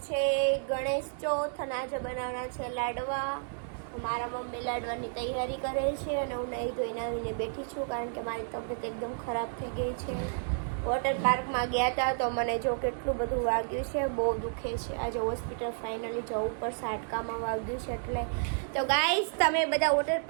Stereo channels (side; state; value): left; silent; digital silence